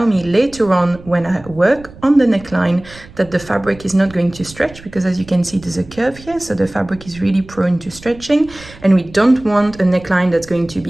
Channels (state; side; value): noise; right; rumble, 20 dB below the sound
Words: me later on when I work on the neckline that the fabric is not going to stretch, because as you can see there's a curve here, so the fabric is really prone to stretching, and we don't want a neckline that's going to